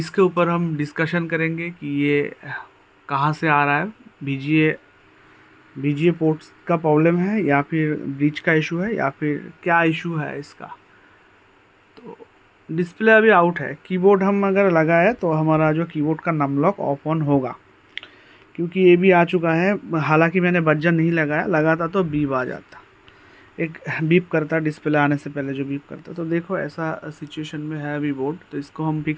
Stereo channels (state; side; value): identical; both; correlation 1.00